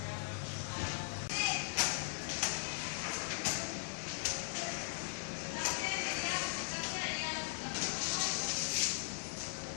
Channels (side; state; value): right; silent; digital silence